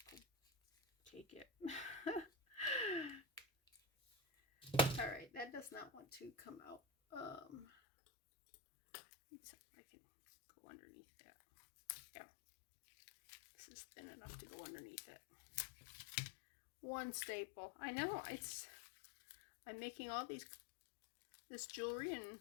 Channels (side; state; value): right; drops out; at 7.7 s